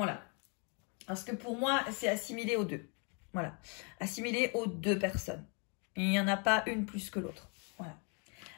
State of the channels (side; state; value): right; quieter; 36.2 dB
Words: Parce que pour moi, c'est assimilé aux deux. Voilà. Assimilé aux deux personnes. Il n'y en a pas une plus que l'autre. Voilà.